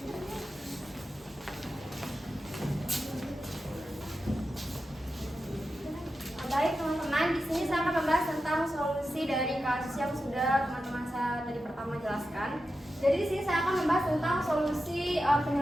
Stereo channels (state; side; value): normal; both; correlation 0.91